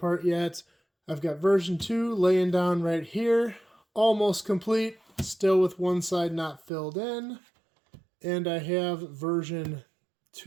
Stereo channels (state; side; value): drops out; left; at 6.7 s